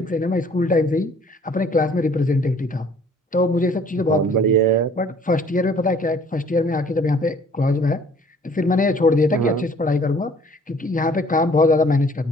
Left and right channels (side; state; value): both; normal; correlation 0.55